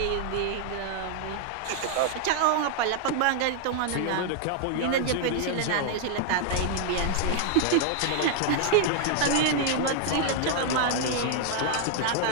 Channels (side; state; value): both; different; correlation 0.00